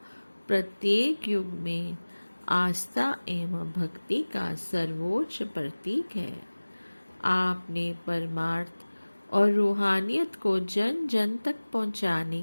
प्रत्येक युग में आस्था एवं भक्ति का सर्वोच्च प्रतीक है। आपने परमार्थ और रूहानियत को जन जन तक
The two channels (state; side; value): inverted; both; correlation -1.00